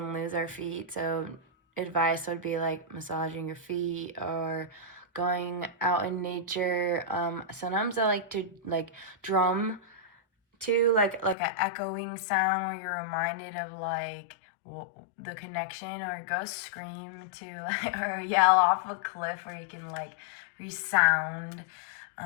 lose our feet. So advice would be like massaging your feet or going out in nature. Sometimes I like to like drum to like an echoing sound where you're reminded of like the connection, or go scream to like or yell off a cliff where you can like resound.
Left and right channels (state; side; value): drops out; right; at 11.4 s